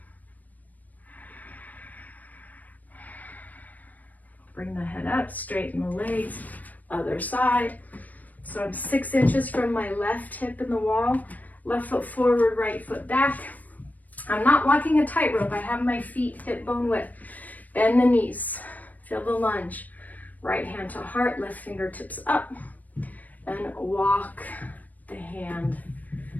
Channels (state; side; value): late; right; 0.078 ms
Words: Bring the head up, straighten the legs, other side. So I'm 6 inches from my left hip in the wall, left foot forward, right foot back. I'm not walking a tightrope. I have my feet hip bone width. Bend the knees, feel the lunge. Right hand to heart, left fingertips up, and walk the hand